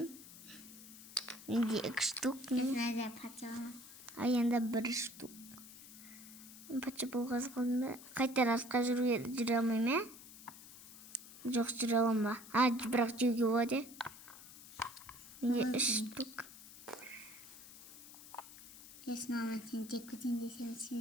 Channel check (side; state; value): left; noise; hiss, 17 dB below the sound